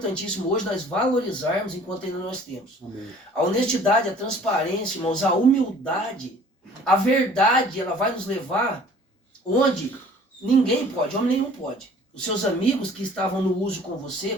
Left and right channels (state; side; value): normal; both; correlation 0.51